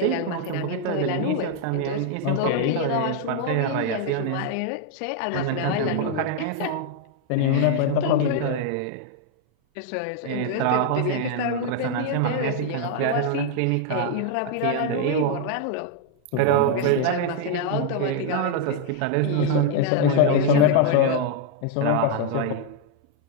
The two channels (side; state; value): both; different; correlation 0.00